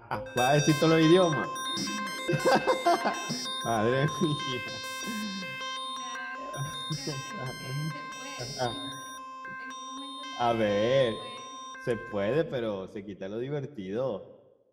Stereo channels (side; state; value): both; identical; correlation 1.00